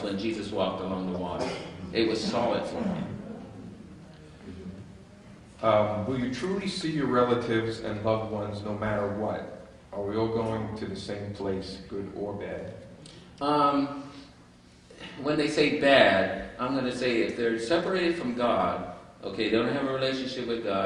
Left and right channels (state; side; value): identical; both; correlation 1.00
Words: when Jesus walked along the water. It was solid for him. Will you truly see your relatives and loved ones no matter what? Are we all going to the same place, good or bad? When they say bad, I'm going to say if they're separated from God, okay, they don't have a relationship with